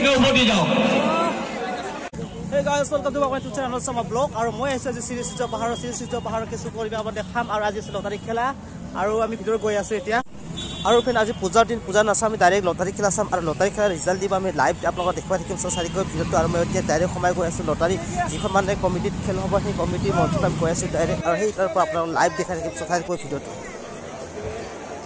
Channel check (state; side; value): identical; both; correlation 1.00